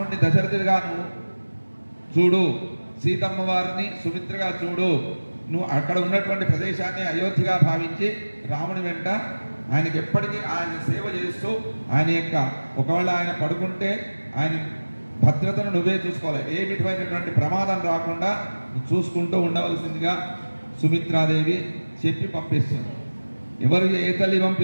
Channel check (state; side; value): inverted; both; correlation -1.00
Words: దశరథుడిగా నువ్వు చూడు, సీతమ్మ వారిని సుమిత్రగా చూడు, నువ్వు అక్కడ ఉన్నటువంటి ప్రదేశాన్ని అయోధ్యగా భావించి రాముని వెంట ఆయనకి ఎప్పటికీ ఆయన సేవ చేస్తూ ఆయన యొక్క ఒకవేళ ఆయన పడుకుంటే ఆయన భద్రతను నువ్వే చూసుకోవాలి, ఏ విధమైనటువంటి ప్రమాదం రాకుండా చూసుకుంటూ ఉండవలసిందిగా సుమిత్రాదేవి చెప్పి పంపిస్తుంది. ఎవరు ఏ తల్లి